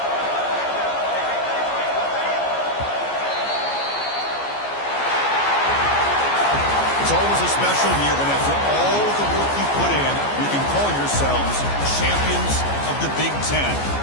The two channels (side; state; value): right; late; 14 ms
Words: It's always a special year when after all the work you put in, you can call yourselves champions of the Big Ten.